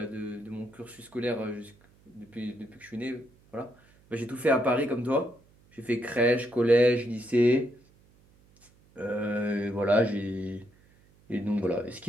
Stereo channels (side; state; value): right; noise; hum, 30 dB below the sound